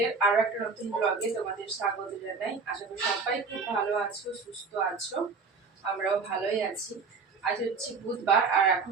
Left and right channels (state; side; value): quieter; left; 4.6 dB